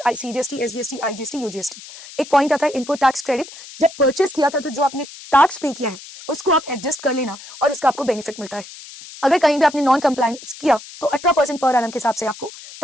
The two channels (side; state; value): left; noise; hiss, 16 dB below the sound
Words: सीजीएसटी, एसजीएसटी, आईजीएसटी, यूजीएसटी। एक पॉइंट आता है इनपुट टैक्स क्रेडिट। जब परचेज किया था तो जो आपने टैक्स पे किया है उसको आप एडजस्ट कर लेना और उसका आपको बेनिफिट मिलता है। अगर कहीं भी आपने नॉन कंप्लायंस किया तो 18% पर एनम के हिसाब से आपको